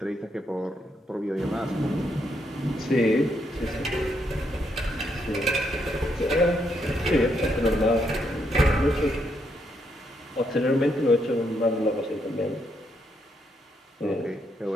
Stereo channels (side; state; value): both; normal; correlation 0.77